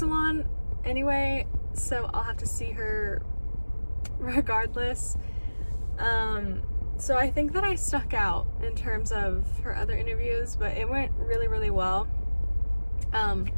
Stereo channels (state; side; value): inverted; both; correlation -1.00